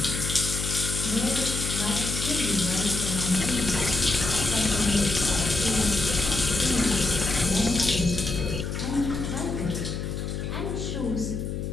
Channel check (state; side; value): noise; left; hum, 4 dB below the sound